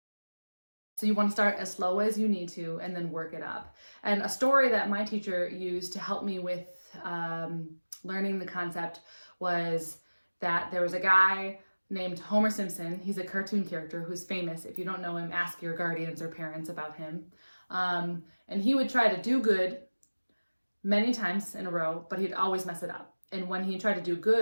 So you want to start as slow as you need to and then work it up. And a story that my teacher used to help me with learning the concept was that there was a guy named Homer Simpson. He's a cartoon character who's famous. If you don't know him, ask your guardians or parents about him. And he would try to do good many times in a row, but he'd always mess it up. And when he tried to do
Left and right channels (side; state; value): both; inverted; correlation -1.00